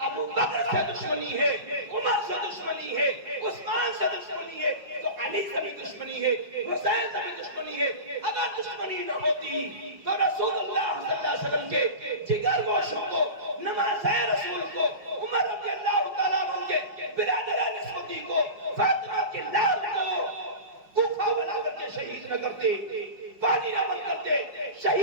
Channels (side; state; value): left; late; 5.2 ms